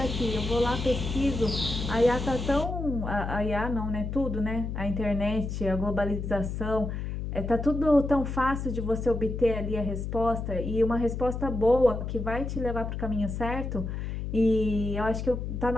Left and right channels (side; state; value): left; noise; hum, 4 dB below the sound